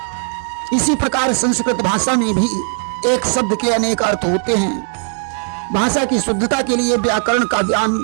इसी प्रकार संस्कृत भाषा में भी एक शब्द के अनेक अर्थ होते हैं। भाषा की शुद्धता के लिए व्याकरण का ज्ञान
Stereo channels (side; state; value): left; silent; 60 dB below the other